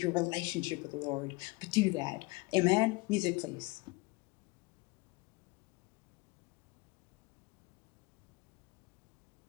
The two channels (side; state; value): right; quieter; 24.5 dB